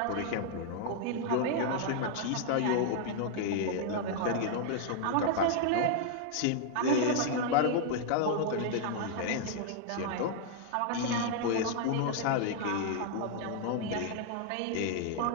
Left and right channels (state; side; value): different; both; correlation -0.01